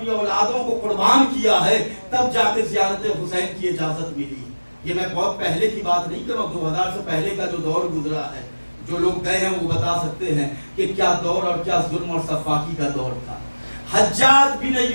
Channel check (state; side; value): inverted; both; correlation -1.00